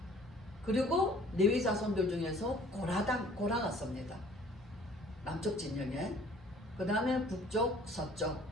그리고 레위 자손들 중에서 고라가 섭니다. 남쪽 진영에. 그 다음에 북쪽, 서쪽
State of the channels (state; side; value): normal; both; correlation 0.54